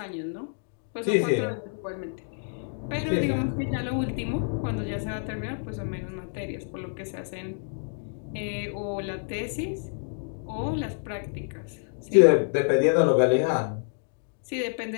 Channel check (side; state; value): right; silent; 59 dB below the other